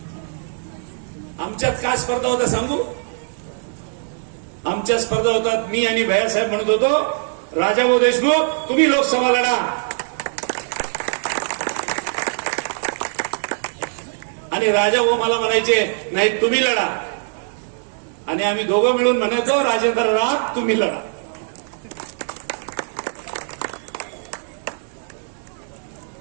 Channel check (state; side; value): silent; left; digital silence